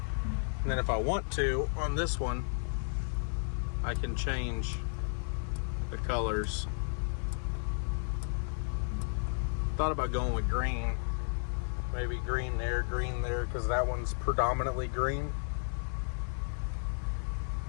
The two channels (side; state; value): right; silent; 56 dB below the other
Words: then if I want to, on this one, I can change the colors. Thought about going with green. Maybe green there, because that one's predominantly green.